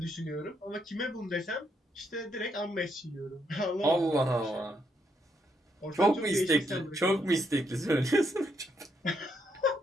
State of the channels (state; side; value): normal; both; correlation 0.76